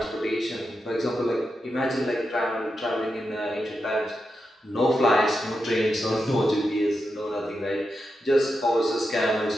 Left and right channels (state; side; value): normal; both; correlation 0.87